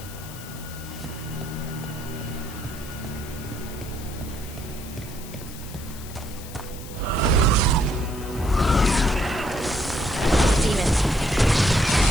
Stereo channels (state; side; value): noise; left; hiss, 15 dB below the sound